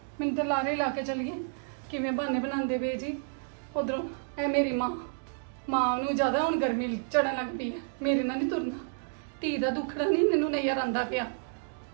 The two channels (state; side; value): silent; left; digital silence